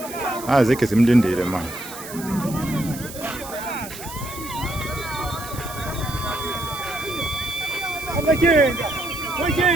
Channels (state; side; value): noise; right; hiss, 13 dB below the sound